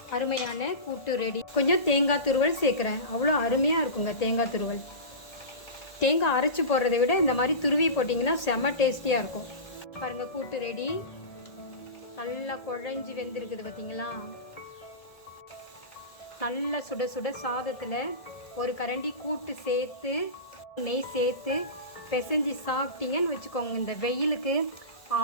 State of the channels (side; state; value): right; late; 1.7 ms